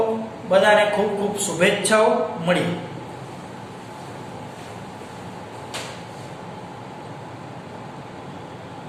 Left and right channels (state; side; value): identical; both; correlation 1.00